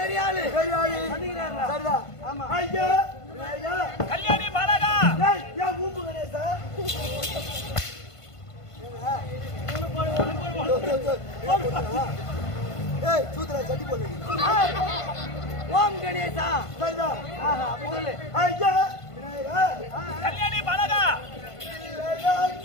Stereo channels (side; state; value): right; late; 1.5 ms